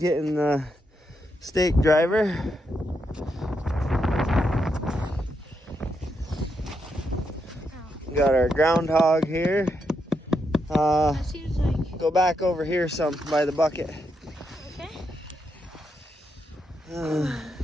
the stake driver. We got our groundhog here. That seems like... Go back over here some by the bucket. Okay.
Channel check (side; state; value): both; normal; correlation 0.81